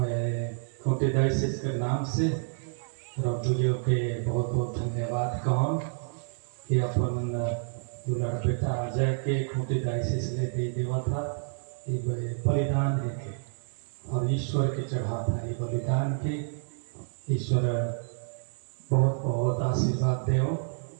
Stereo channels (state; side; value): silent; left; 56 dB below the other